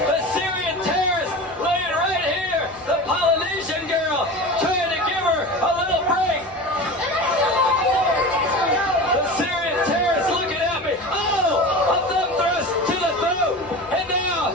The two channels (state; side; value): normal; both; correlation 0.31